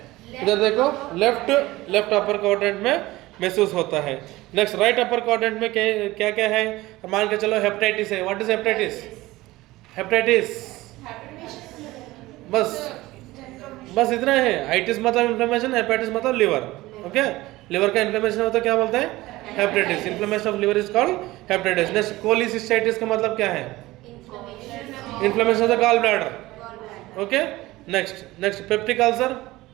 इधर देखो, लेफ्ट अपर क्वाड्रेंट में महसूस होता है। नेक्स्ट, राइट अपर क्वाड्रेंट में क्या क्या है? मान के चलो हेपेटाइटिस है। What is hepatitis? बस इतना है। आइटिस मतलब इन्फ्लेमेशन, हेपेटाइटिस मतलब लिवर, ओके। लिवर का इन्फ्लेमेशन होता है, क्या बोलते हैं? Hepatitis. Inflammation of liver is called hepatitis. Next, cholecystitis का मतलब क्या है? Inflammation of the gall bladder, okay. Next, peptic ulcer.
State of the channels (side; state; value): left; quieter; 18.6 dB